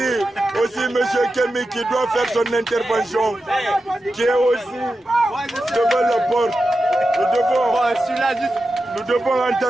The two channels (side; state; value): both; normal; correlation 0.91